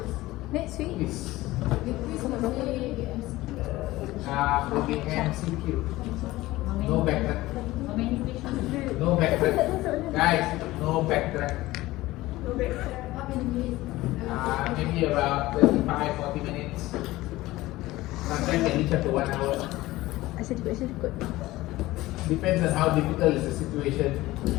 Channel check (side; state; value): right; quieter; 18.0 dB